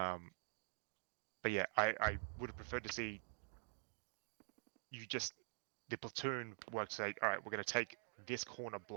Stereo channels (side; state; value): left; silent; digital silence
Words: yeah, I would have preferred to see the platoon work to say, all right, we're going to take this corner